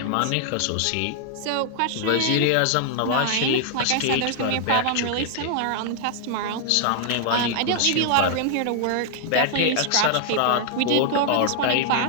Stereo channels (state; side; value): different; both; correlation 0.00